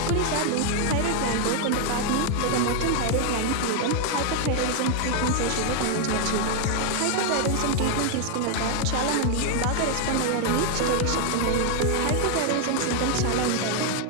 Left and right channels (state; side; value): different; both; correlation 0.00